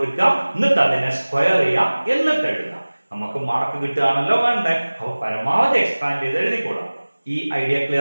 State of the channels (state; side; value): inverted; both; correlation -1.00